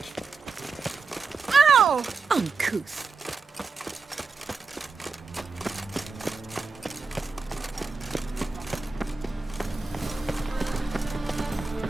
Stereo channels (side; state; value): left; quieter; 4.4 dB